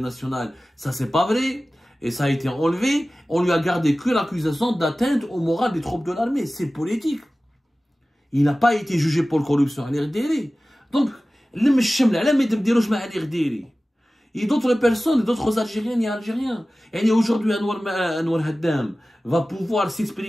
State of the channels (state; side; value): normal; both; correlation 0.97